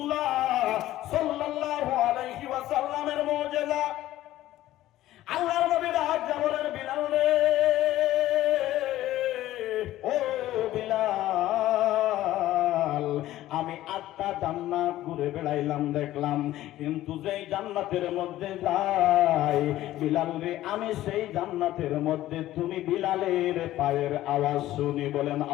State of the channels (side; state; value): right; quieter; 14.7 dB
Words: সাল্লাল্লাহু আলাইহি ওয়াসাল্লামের মুজিজা। আল্লাহর নবী ডাক দিয়া বলেন, বিলাল রে, ও বিলাল, আমি 8টা জান্নাত ঘুরে বেড়াইলাম, দেখলাম, কিন্তু যেই জান্নাতের মধ্যে যাই বিলাল রে, আমি সেই জান্নাতের মধ্যে তুমি বিলালের পায়ের আওয়াজ শুনি, বলেন